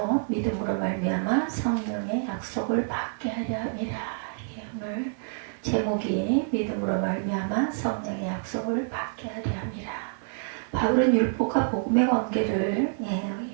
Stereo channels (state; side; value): silent; left; digital silence